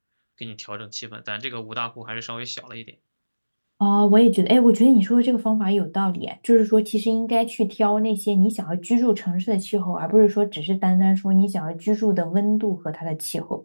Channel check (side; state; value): both; inverted; correlation -1.00